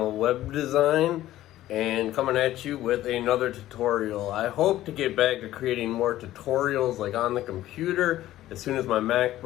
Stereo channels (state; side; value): quieter; right; 14.4 dB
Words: Web Design, and coming at you with another tutorial. I hope to get back to creating more tutorials like on the computer as soon as my